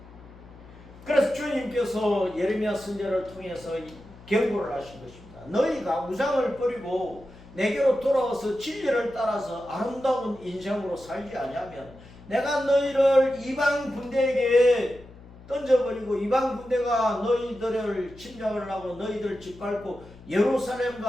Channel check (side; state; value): left; noise; hum, 20 dB below the sound